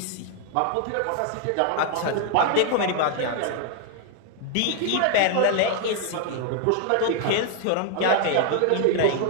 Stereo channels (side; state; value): both; different; correlation 0.00